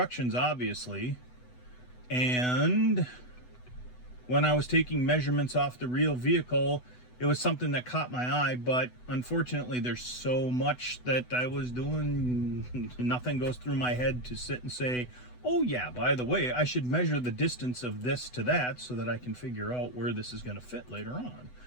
obviously. And when I was taking measurements off the real vehicle, it was something that caught my eye, but unfortunately there's so much that I was doing, nothing goes through my head to sit and say, oh yeah, by the way, I should measure the distance of this to that so that I can figure out where this is going to fit later on.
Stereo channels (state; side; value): late; right; 8.0 ms